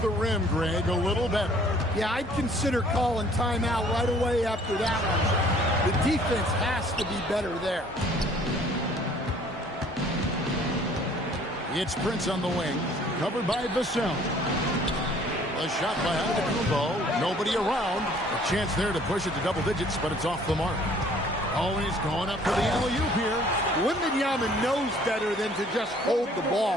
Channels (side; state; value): both; normal; correlation 0.56